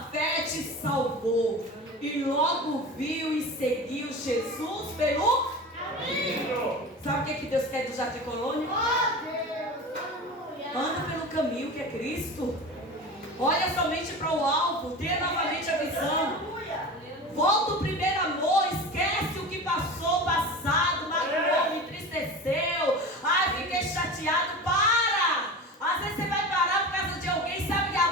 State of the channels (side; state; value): both; normal; correlation 0.31